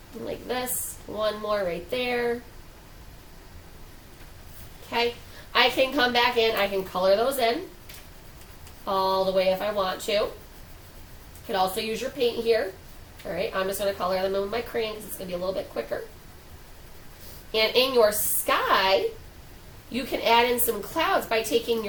Like this. 1 more right there. Okay. I can come back in. I can color those in all the way if I want to. You could also use your paint here. Alright, I'm just going to color them in with my crayon because it's going to be a little bit quicker. And in your sky, you can add in some clouds by taking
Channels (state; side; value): identical; both; correlation 1.00